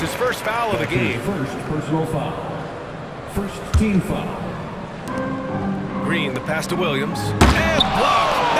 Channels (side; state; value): both; identical; correlation 1.00